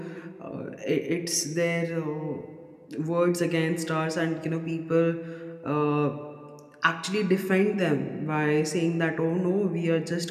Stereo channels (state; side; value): identical; both; correlation 1.00